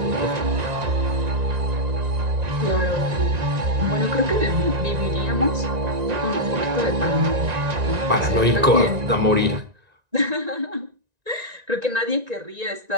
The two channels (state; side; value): late; left; 1.9 ms